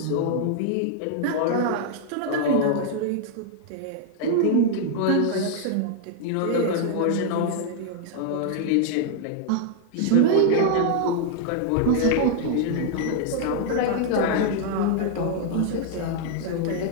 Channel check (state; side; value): different; both; correlation 0.00